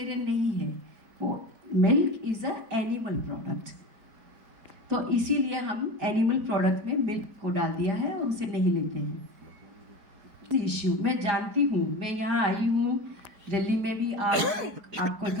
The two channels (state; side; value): late; left; 4.7 ms